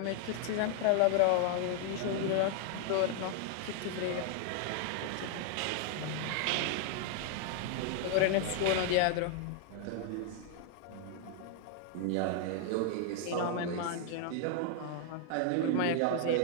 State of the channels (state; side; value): different; both; correlation 0.00